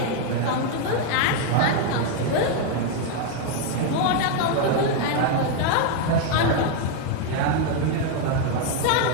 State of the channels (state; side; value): different; both; correlation 0.01